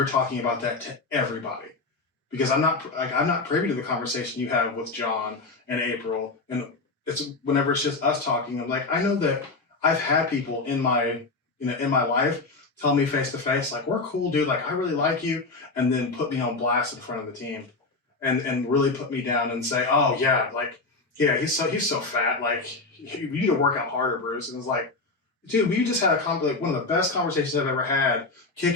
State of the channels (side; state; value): right; quieter; 3.6 dB